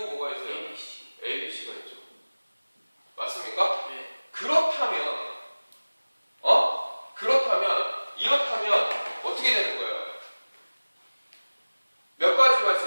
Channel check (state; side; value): inverted; both; correlation -1.00